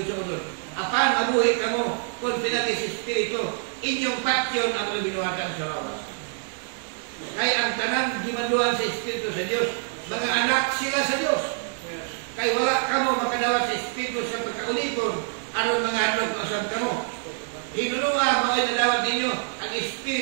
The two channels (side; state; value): left; silent; 61 dB below the other